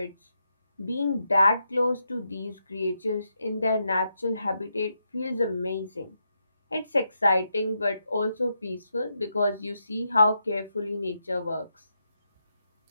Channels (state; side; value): inverted; both; correlation -0.82